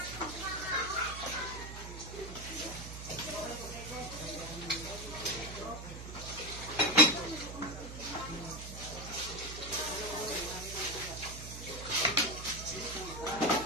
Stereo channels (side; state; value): right; noise; hum, 10 dB below the sound